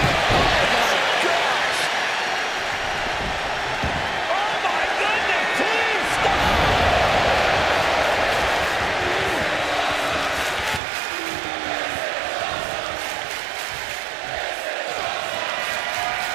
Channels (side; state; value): left; drops out; at 10.8 s